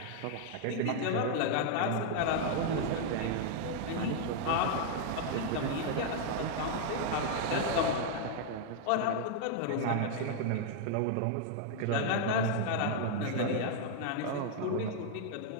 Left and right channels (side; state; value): both; different; correlation -0.01